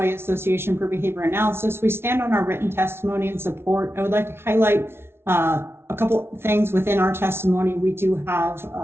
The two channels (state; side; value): late; left; 0.12 ms